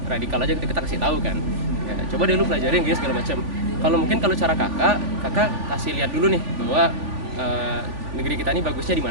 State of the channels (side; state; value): left; late; 3.5 ms